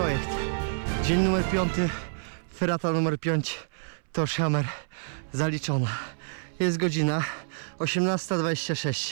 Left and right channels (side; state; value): left; silent; 59 dB below the other